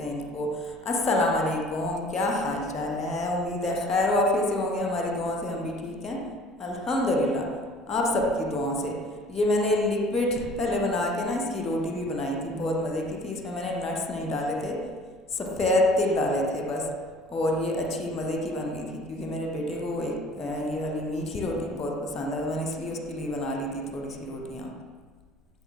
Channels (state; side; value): normal; both; correlation 0.50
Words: इनको। अस्सलाम वालेकुम, क्या हाल चाल है? उम्मीद है खैर वाफियत से होंगे। हमारी दुआओं से हम भी ठीक हैं अल्हम्दुलिल्लाह, आप सबकी दुआओं से। ये मैंने लिक्विड पहले बना के ना इसकी रोटी भी बनाई थी, बहुत मज़े की थी। इसमें मैंने नट्स नहीं डाले थे, सफ़ेद तिल डाले थे बस, और ये अच्छी मज़े की बन गई थी क्योंकि मेरे बेटे को ये वाली मीठी रोटी बहुत पसंद है, तो मैंने इसलिए उसके लिए बना ली थी थोड़ी सी रोटियाँ।